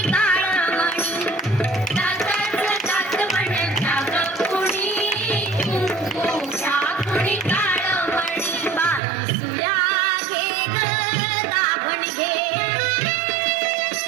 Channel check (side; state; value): left; drops out; at 9.0 s